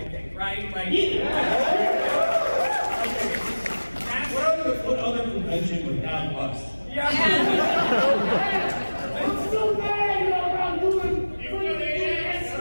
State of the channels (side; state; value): both; inverted; correlation -1.00